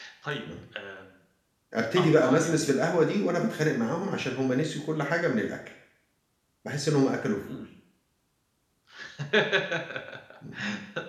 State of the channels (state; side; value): identical; both; correlation 1.00